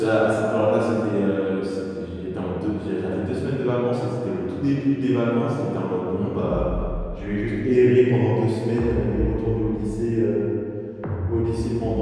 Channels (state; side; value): identical; both; correlation 1.00